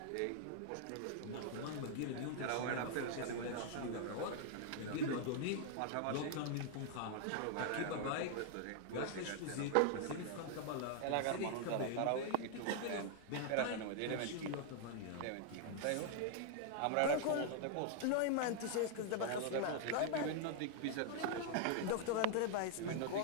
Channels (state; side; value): different; both; correlation 0.00